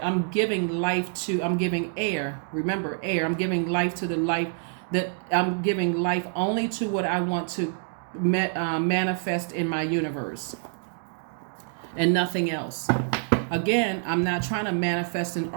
I'm giving air. Remember, air. I'm giving life to the life that I'm giving life only to what I want to manifest in my universe, and nothing else. Again, I'm not trying to manifest an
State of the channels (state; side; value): silent; left; 60 dB below the other